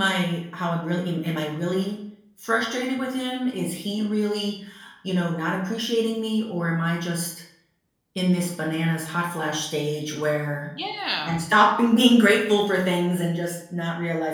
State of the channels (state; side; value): identical; both; correlation 1.00